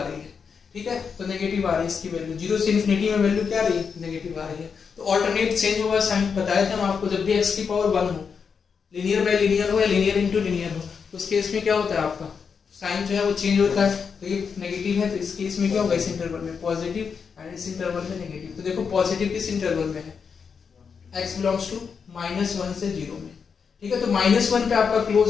रही है, ठीक है, तो नेगेटिव आ रही है इसकी वैल्यू, 0 से इन्फिनिटी में वैल्यू क्या आ रही है, नेगेटिव आ रही है। तो ऑल्टरनेट चेंज होगा साइन, बताया था हम आपको, जब भी x की पावर 1 हो, लीनियर बाय लीनियर हो या लीनियर इनटू लीनियर हो, तो उस केस में क्या होता है आपका साइन जो है वो चेंज होता है, तो ये नेगेटिव है, तो इस केस में क्या होगा, इस इंटरवल में पॉजिटिव एंड इस इंटरवल में नेगेटिव। तो देखो पॉजिटिव किस इंटरवल में है, x बिलोंग्स टू -1 से 0 में, ठीक है, तो -1 पे आपका क्लोज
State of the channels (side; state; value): right; quieter; 6.1 dB